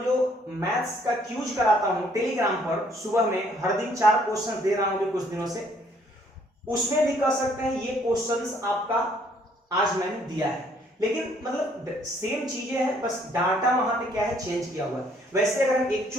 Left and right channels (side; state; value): both; normal; correlation 0.64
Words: जो मैथ्स का क्यूज कराता हूं टेलीग्राम पर, सुबह में हर दिन 4 क्वेश्चन दे रहा हूं कुछ दिनों से, उसमें भी कह सकते हैं ये क्वेश्चंस आपका आज मैंने दिया है, लेकिन मतलब सेम चीजें हैं, बस डाटा वहां पे क्या है चेंज किया हुआ है। वैसे अगर हम